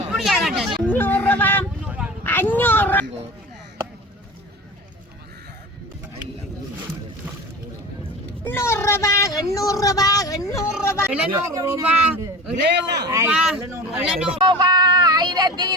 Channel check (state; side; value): normal; both; correlation 0.34